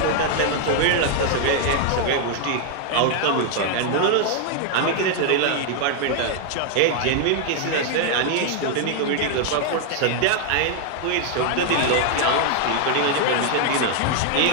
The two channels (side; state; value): both; different; correlation 0.00